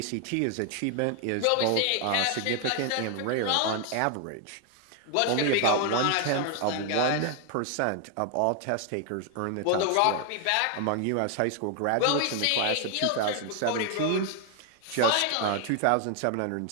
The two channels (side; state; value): both; different; correlation 0.01